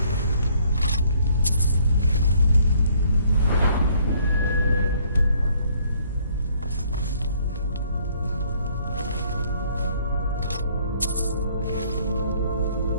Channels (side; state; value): both; inverted; correlation -0.63